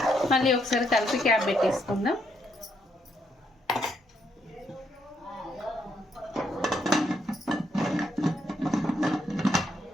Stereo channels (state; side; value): normal; both; correlation 0.75